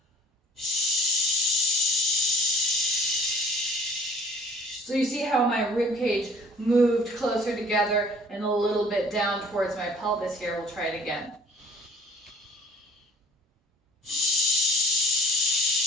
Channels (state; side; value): normal; both; correlation 0.50